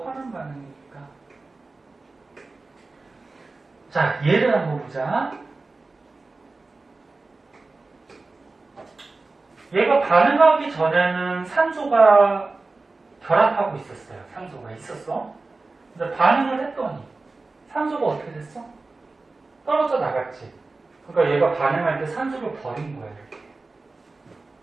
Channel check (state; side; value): quieter; left; 3.5 dB